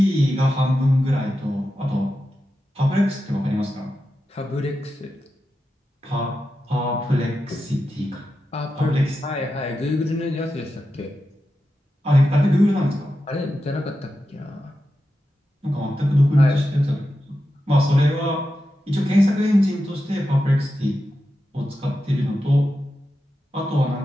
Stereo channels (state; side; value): normal; both; correlation 0.90